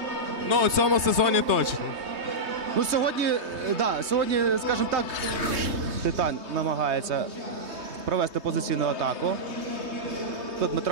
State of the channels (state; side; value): late; left; 3.2 ms